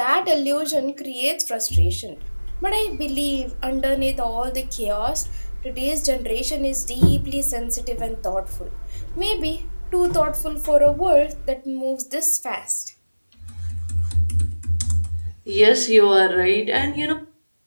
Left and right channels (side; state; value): both; inverted; correlation -1.00